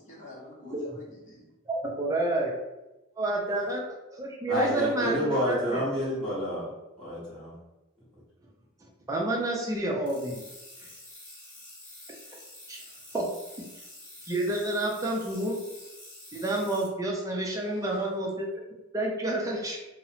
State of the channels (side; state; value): both; normal; correlation 0.33